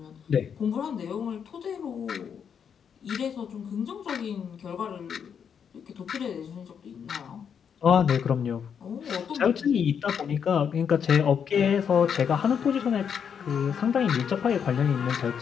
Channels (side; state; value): right; quieter; 7.4 dB